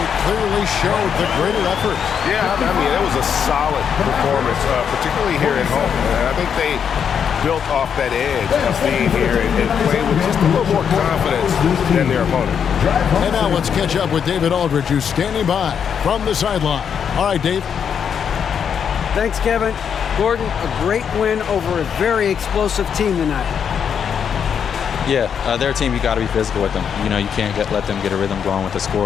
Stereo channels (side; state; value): right; quieter; 7.6 dB